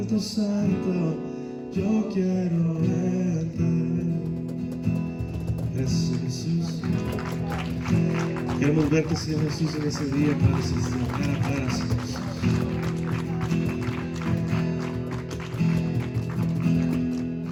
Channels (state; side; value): identical; both; correlation 1.00